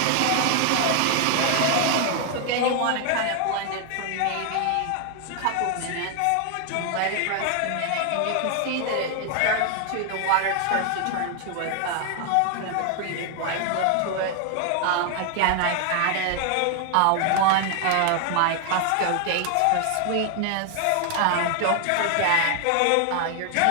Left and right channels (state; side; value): different; both; correlation 0.00